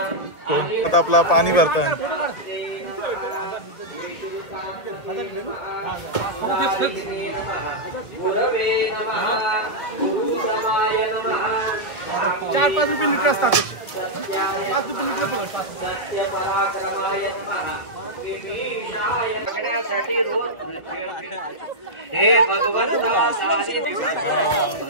आता आपला पाणी भरतात. ₹4-5 लिटर असतात. 5 लिटर हे भगवंत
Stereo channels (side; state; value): right; late; 2.0 ms